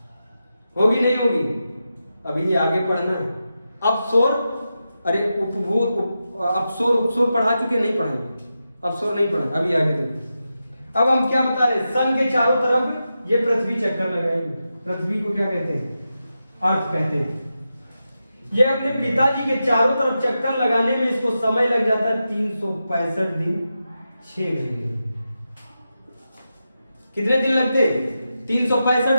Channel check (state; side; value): inverted; both; correlation -0.89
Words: होगी नहीं होगी। अभी आगे पढ़ना है। अपसोर, अरे अपसोर उपसोर पढ़ा चुके, नहीं पढ़ेंगे, अपसोर नहीं पढ़े, अभी आगे देखो। अब हम क्या बता रहे, सन के चारों तरफ ये पृथ्वी चक्कर लगाएगी। पृथ्वी को क्या कहते हैं, अर्थ कहते हैं। ये अपने पिताजी के चारों तरफ चक्कर लगाने में इसको समय लग जाता है 365 दिन 6 घंटे। कितने दिन लगते,